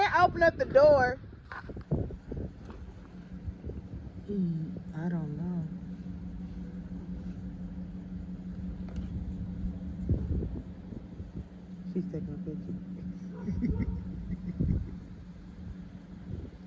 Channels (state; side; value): identical; both; correlation 1.00